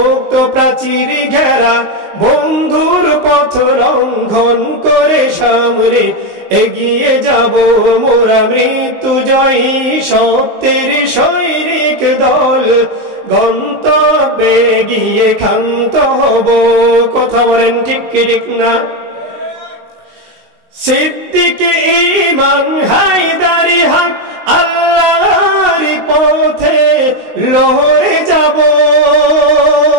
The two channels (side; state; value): left; late; 19 ms